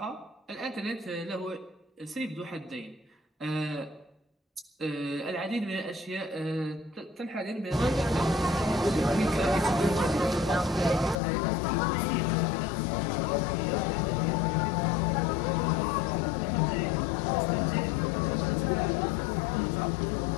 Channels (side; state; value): right; drops out; at 11.2 s